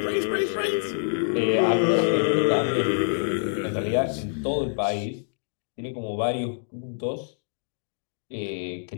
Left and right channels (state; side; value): silent; right; digital silence